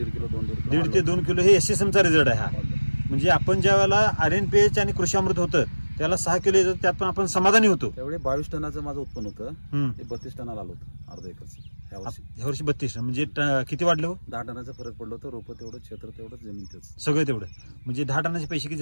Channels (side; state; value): both; inverted; correlation -1.00